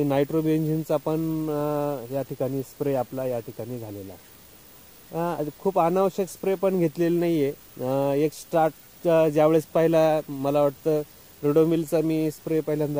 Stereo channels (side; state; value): both; identical; correlation 1.00